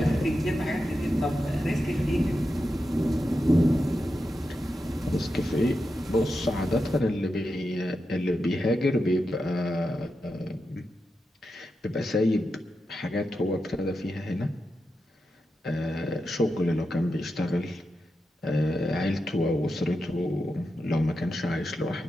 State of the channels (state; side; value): normal; both; correlation 0.88